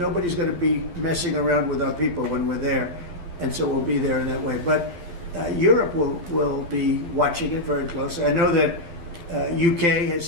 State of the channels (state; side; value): late; left; 12 ms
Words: going to be messing around with our people when we're there. And so we'll be there in that way. But Europe will be watching it very closely. I know that UK